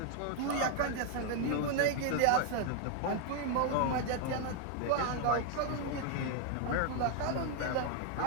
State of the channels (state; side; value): different; both; correlation 0.00